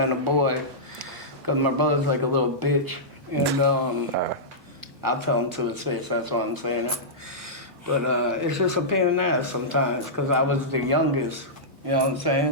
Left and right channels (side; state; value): both; normal; correlation -0.14